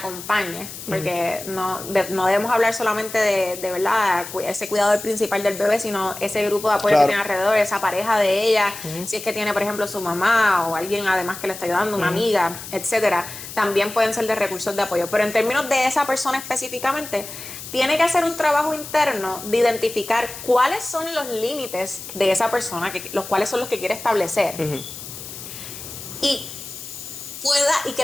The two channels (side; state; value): left; noise; hiss, 11 dB below the sound